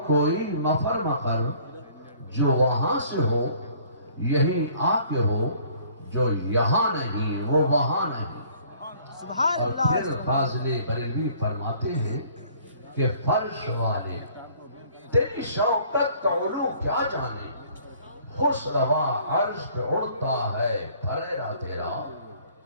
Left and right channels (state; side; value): inverted; both; correlation -0.56